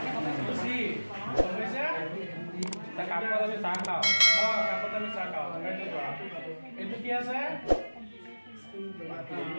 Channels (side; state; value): both; inverted; correlation -1.00